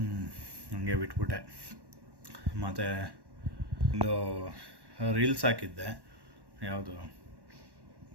ಹಂಗೆ ಬಿಟ್ಬಿಟ್ಟೆ. ಮತ್ತು ಒಂದು ರೀಲ್ಸ್ ಹಾಕಿದ್ದೆ. ಯಾವುದು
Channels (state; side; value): late; left; 1.1 ms